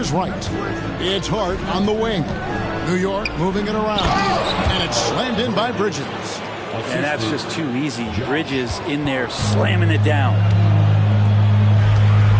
Wright. It's Hart on the wing. New York moving it around. And it's slammed in by Bridges. And that's just too easy. Bridges in there slamming it down.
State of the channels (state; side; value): identical; both; correlation 1.00